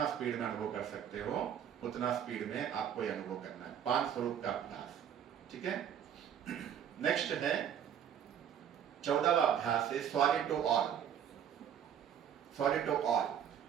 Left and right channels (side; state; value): left; quieter; 9.1 dB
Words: स्पीड में अनुभव कर सकते हो उतना स्पीड में आपको यह अनुभव करना है। 5 स्वरूप का अभ्यास। ठीक है, नेक्स्ट है 14वां अभ्यास है sorry to all. Sorry to all,